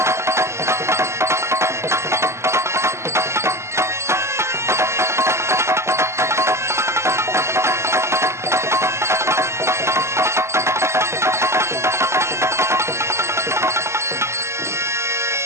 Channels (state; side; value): late; left; 0.13 ms